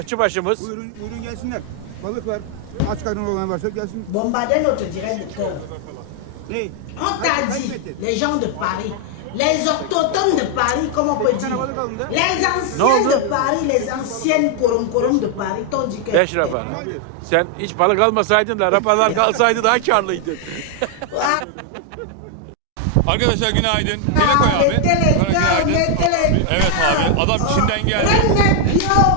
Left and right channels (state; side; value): different; both; correlation 0.00